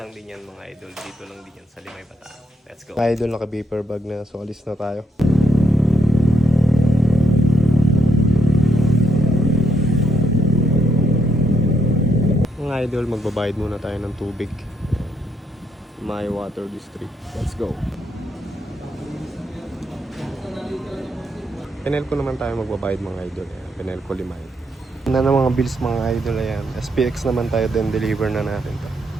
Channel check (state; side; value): normal; both; correlation 0.77